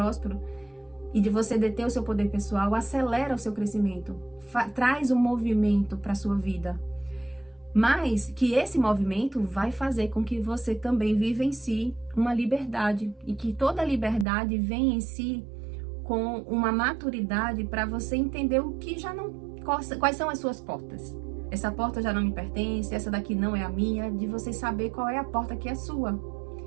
e de você deter o seu poder pessoal, acelera o seu crescimento, traz um movimento para a sua vida. Mas que esse movimento vai fazer com que você também vivencie uma liberdade e que toda liberdade vem em si com uma maturidade para você entender o que já não... Quais são as suas portas. Essa porta já não me pertence, essa daqui não é a minha, de você saber qual é a porta que é sua.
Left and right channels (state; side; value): drops out; left; at 14.2 s